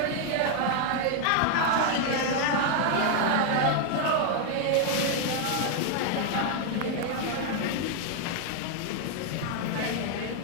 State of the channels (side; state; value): both; different; correlation 0.00